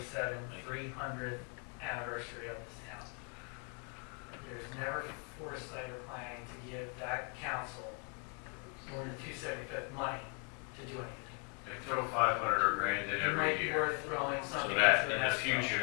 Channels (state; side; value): quieter; right; 35.8 dB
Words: 300th anniversary of this town. There's never foresight or planning to give that council more than 275th money to do anything. They throw 500 or grand in It might every be year. worth throwing So something that, into in the next future,